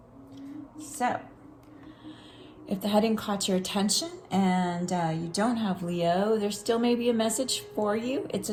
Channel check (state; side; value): identical; both; correlation 1.00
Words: So, if the heading caught your attention and you don't have Leo, there still may be a message for you. It's a